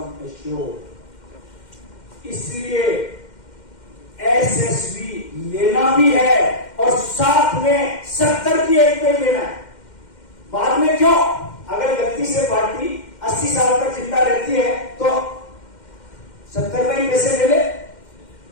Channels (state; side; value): late; right; 2.1 ms